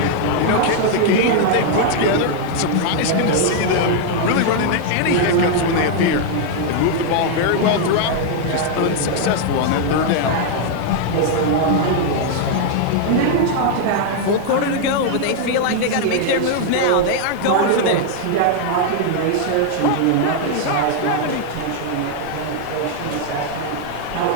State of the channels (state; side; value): different; both; correlation 0.00